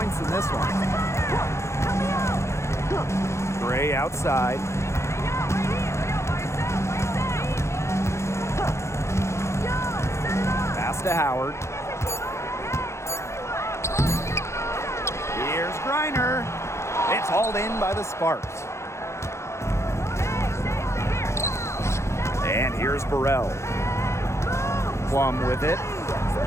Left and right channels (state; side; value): late; right; 0.13 ms